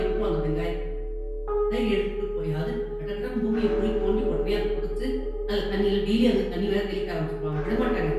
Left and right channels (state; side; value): identical; both; correlation 1.00